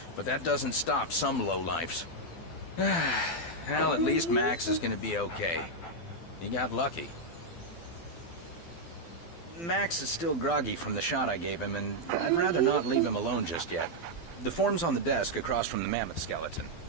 But that doesn't stop some lowlifes. Well, at least Max is gonna be okay. He got lucky. Max is still groggy from the shot I gave him, and I'd rather not leave him alone just yet. The form's on the desk across from the mammoth skeleton.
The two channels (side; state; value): right; late; 12 ms